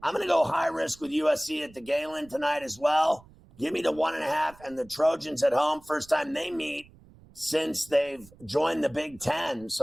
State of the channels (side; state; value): right; noise; rumble, 25 dB below the sound